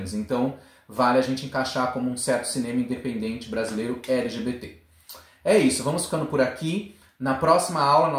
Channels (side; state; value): both; identical; correlation 1.00